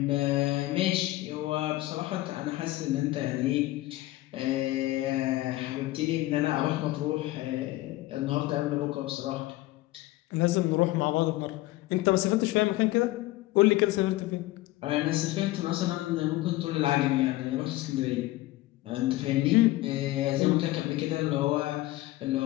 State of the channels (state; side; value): quieter; right; 17.7 dB